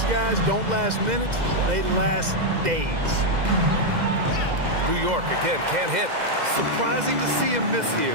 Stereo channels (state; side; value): late; left; 2.0 ms